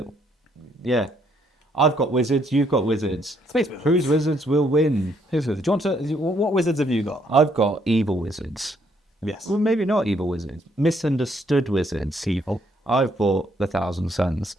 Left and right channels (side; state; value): both; normal; correlation 0.70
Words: Yeah. I've got wizards, you've got wizards. Space wizards. Whose wizards will win? Whose wizards? Do you want to... What wizards have you got? I've got evil wizards. Yes. Well, maybe not evil wizards. Misunderstood wizards. Evil. I've bought the 1,000 Suns.